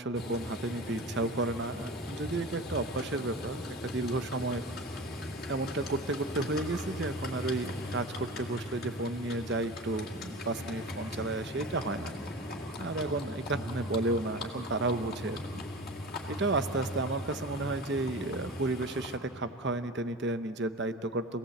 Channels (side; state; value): both; normal; correlation 0.33